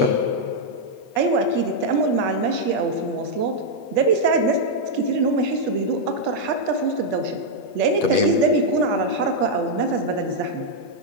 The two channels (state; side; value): late; right; 8.4 ms